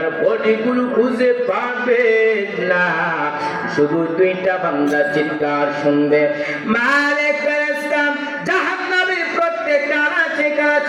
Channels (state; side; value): identical; both; correlation 1.00